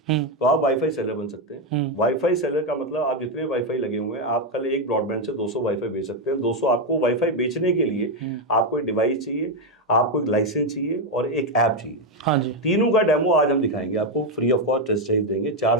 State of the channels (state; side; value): normal; both; correlation 0.05